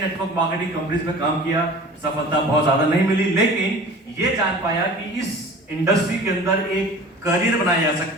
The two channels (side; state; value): both; normal; correlation 0.42